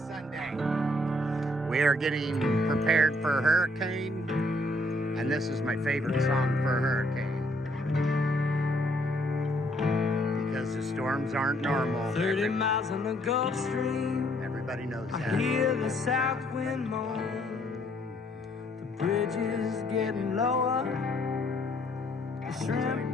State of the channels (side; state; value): both; normal; correlation 0.67